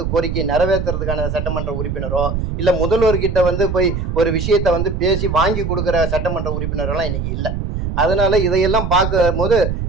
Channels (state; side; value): noise; right; rumble, 3 dB below the sound